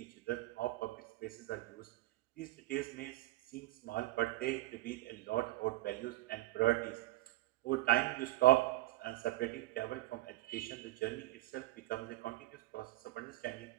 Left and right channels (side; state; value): left; quieter; 17.7 dB